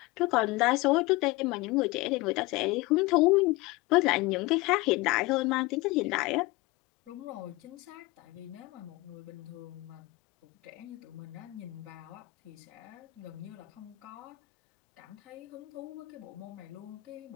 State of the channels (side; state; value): right; quieter; 21.8 dB